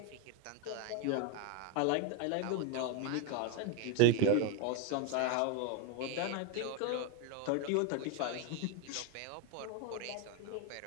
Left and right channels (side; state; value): both; different; correlation 0.02